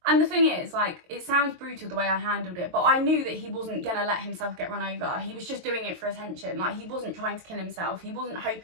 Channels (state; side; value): late; left; 23 ms